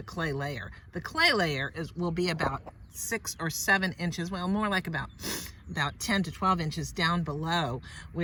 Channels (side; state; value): both; identical; correlation 1.00